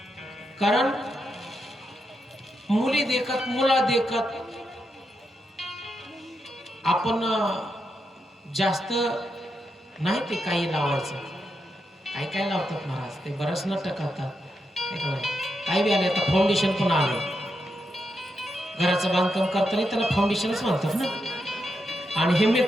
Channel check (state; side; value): normal; both; correlation 0.84